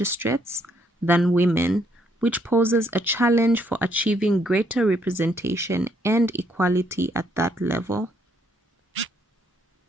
than women, which poses a challenge for achieving greater representation and equality at that level.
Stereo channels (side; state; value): both; normal; correlation 0.71